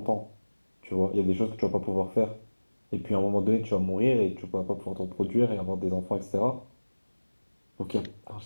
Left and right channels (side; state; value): both; inverted; correlation -1.00